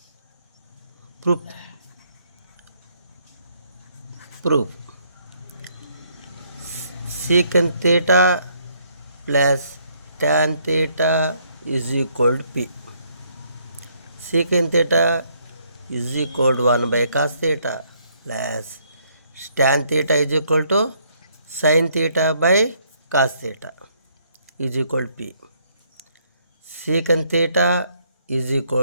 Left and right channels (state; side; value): inverted; both; correlation -0.69